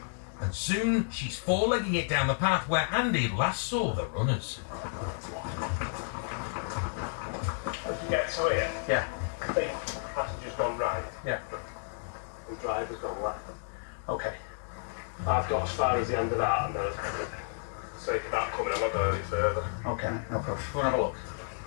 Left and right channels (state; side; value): silent; right; digital silence